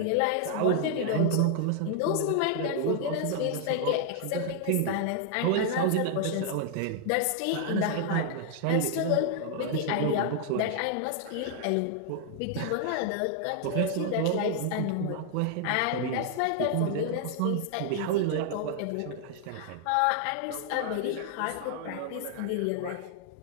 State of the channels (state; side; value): different; both; correlation 0.00